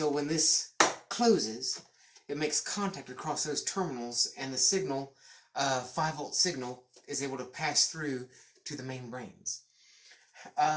when this closes, it makes contact across those terminals, and the signal, 5-volt signal, is able to pass through to the main brains.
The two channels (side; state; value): both; identical; correlation 1.00